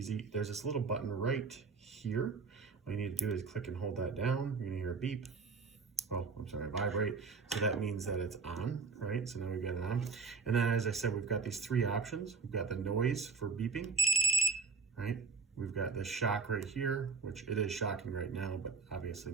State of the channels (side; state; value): left; quieter; 4.8 dB